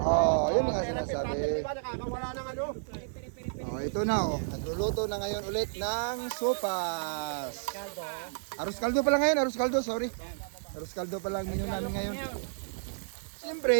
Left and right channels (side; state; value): left; silent; digital silence